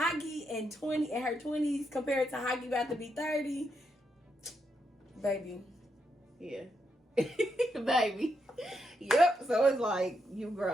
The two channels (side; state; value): both; normal; correlation 0.81